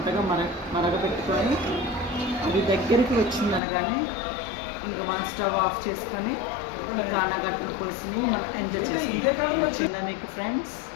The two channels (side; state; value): right; drops out; at 3.6 s